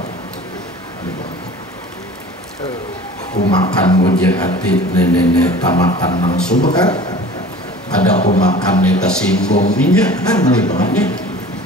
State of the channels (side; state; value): both; normal; correlation 0.42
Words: Kumakan wajah hati nenek tamakan nang subhat. Ada kumakan neta singgung minyak kan alimannya.